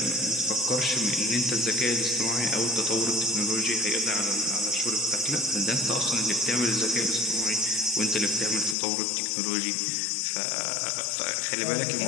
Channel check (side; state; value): right; drops out; at 8.8 s